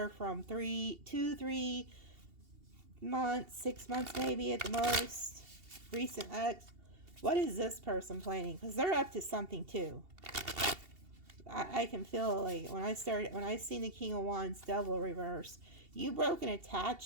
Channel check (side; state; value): left; late; 2.7 ms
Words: from 3 months, 6 months maybe at the most. Recent ex. What is this person planning? Because they're up to something too. I can feel like when I seen the King of Wands double reverse, you broke an